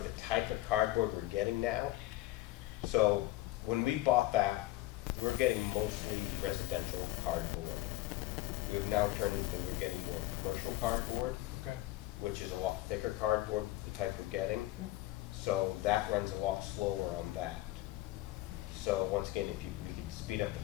the type of cardboard we're getting now, so when we bought that, we were getting mostly residential cardboard. We've now turned into, we're getting more commercial cardboard, Okay. which is a lot thicker cardboard, the type we're getting. So that runs a lot slower on that. So once again, if we could speed up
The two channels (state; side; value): quieter; right; 17.0 dB